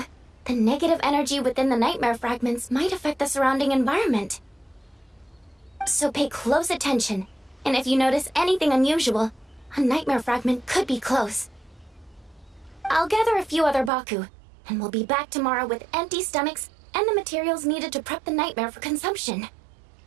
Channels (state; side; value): drops out; left; at 13.9 s